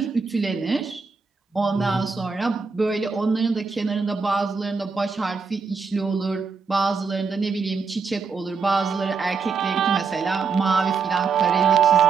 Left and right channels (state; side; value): quieter; left; 5.1 dB